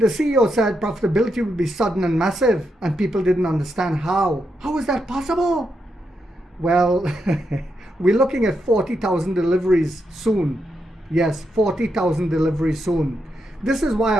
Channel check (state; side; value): normal; both; correlation 0.83